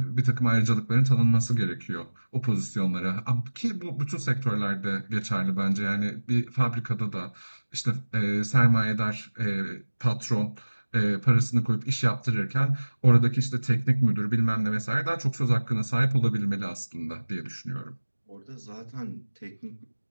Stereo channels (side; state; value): both; inverted; correlation -1.00